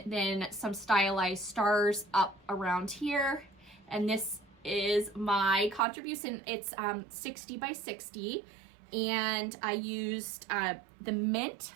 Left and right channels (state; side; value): drops out; left; at 5.8 s